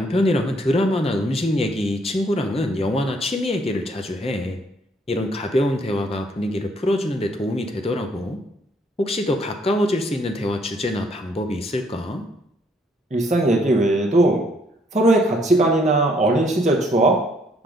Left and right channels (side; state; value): both; normal; correlation 0.67